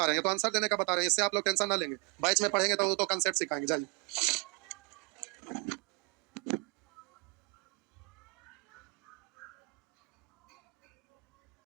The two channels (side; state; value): left; quieter; 30.8 dB